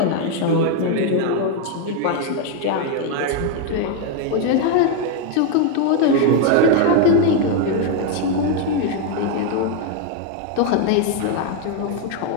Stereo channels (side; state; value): both; different; correlation 0.01